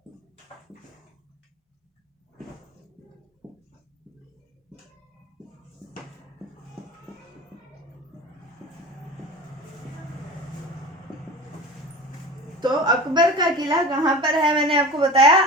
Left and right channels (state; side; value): normal; both; correlation 0.35